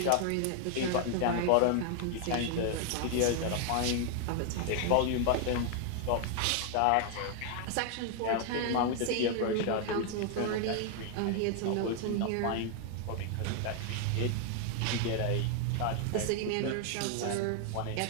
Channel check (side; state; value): both; different; correlation 0.00